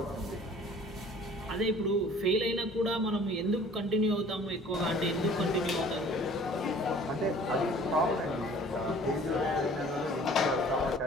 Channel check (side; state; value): both; normal; correlation 0.50